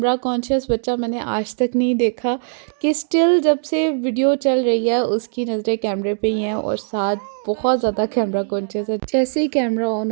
कॉन्शियस बच्चा मैंने आज तक नहीं देखा, कि स्टिल जब से वीडियो चल रही है उसकी नज़रें कैमरे पे ही हैं, और साथ बहुत ज़्यादा कैमरा कॉन्शियस है। जैसे ही कैमरा ऑन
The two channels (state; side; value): silent; left; digital silence